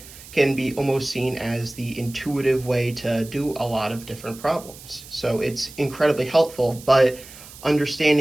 can be almost seen as the intuitive way to do a lot of different problems. So it's incredibly helpful, but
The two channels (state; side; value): noise; right; hiss, 18 dB below the sound